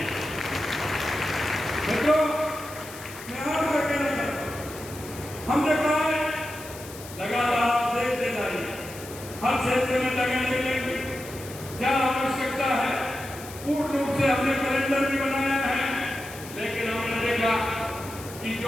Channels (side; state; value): left; noise; hiss, 15 dB below the sound